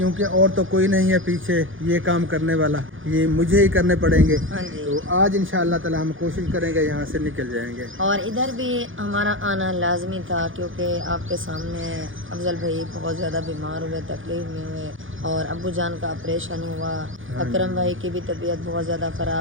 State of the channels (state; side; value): late; left; 0.58 ms